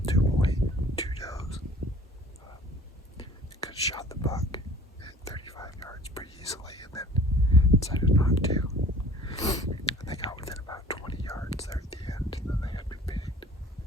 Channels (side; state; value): both; normal; correlation 0.48